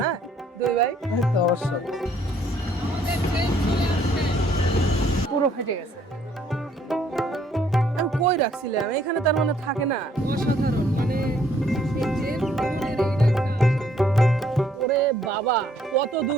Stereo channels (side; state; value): both; normal; correlation 0.64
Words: হ্যাঁ দুই ভাই অবশ্যই পুরো ফেটে গেছে। আমি কই রাখছিলাম, এখানে তার মানে থাকে না। অসাধারণ, মানে ওরে বাবা কত